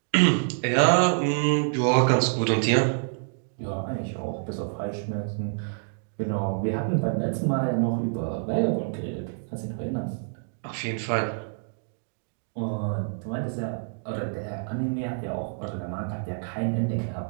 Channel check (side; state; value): left; silent; digital silence